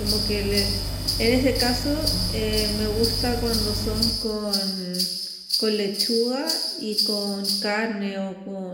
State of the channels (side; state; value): both; identical; correlation 1.00